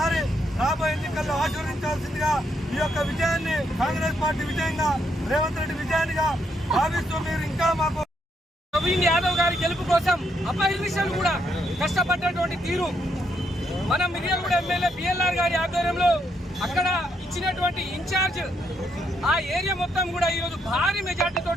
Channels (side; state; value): both; normal; correlation 0.76